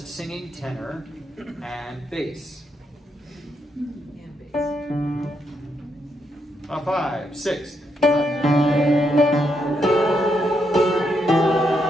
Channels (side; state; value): both; normal; correlation 0.79